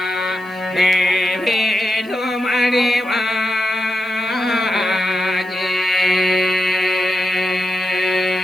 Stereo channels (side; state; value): right; noise; hiss, 27 dB below the sound